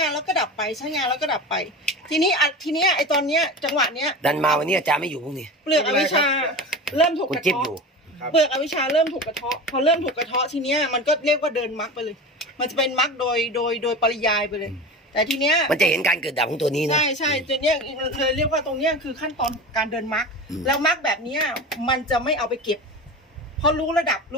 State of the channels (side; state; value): both; normal; correlation 0.30